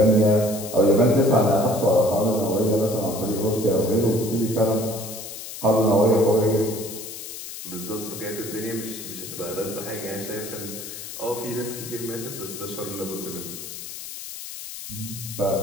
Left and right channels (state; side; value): noise; left; hiss, 10 dB below the sound